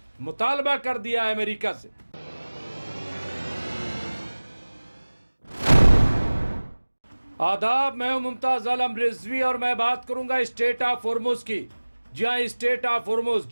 मुतालबा कर दिया अमेरिका से। आदाब, मैं हूं मुमताज आलम रिजवी और मैं बात करूंगा स्टेट ऑफ होर्मुज की। जहां स्टेट ऑफ होर्मुज,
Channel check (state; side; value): inverted; both; correlation -1.00